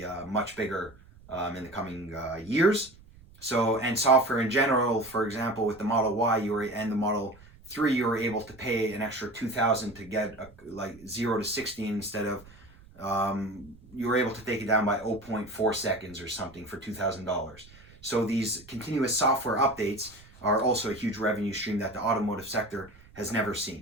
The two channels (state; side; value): noise; right; rumble, 24 dB below the sound